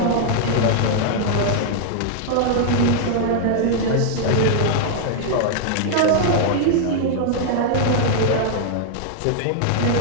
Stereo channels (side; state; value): both; different; correlation 0.00